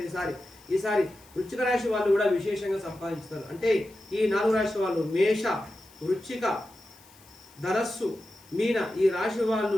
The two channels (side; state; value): left; noise; hiss, 26 dB below the sound